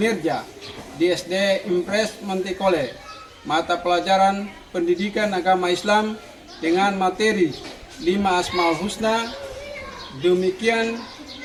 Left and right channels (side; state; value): both; identical; correlation 1.00